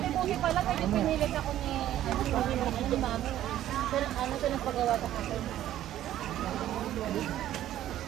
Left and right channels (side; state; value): left; quieter; 12.6 dB